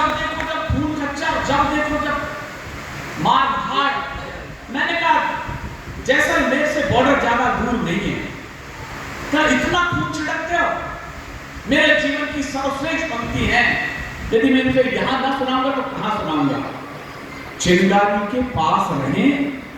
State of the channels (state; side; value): identical; both; correlation 1.00